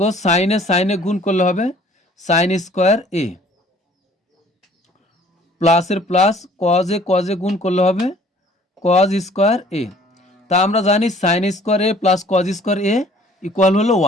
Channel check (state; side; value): normal; both; correlation 0.55